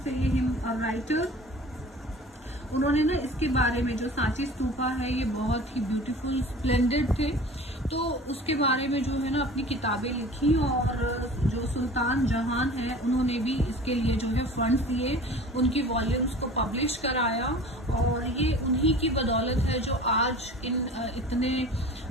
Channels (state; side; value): normal; both; correlation 0.42